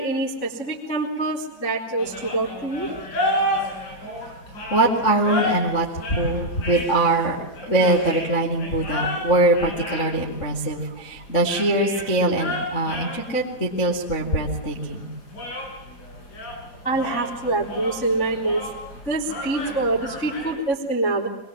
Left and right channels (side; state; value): right; late; 3.6 ms